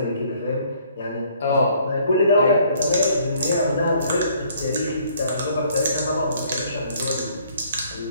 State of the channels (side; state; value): both; inverted; correlation -0.61